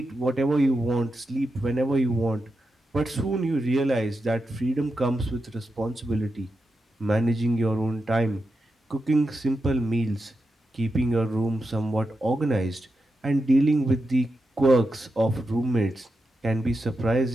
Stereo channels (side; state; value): both; normal; correlation 0.88